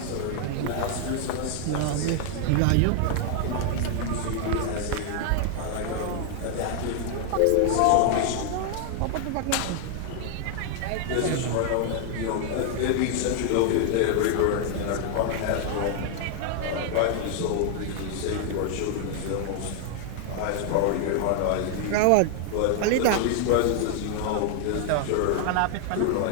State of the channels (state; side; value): different; both; correlation 0.00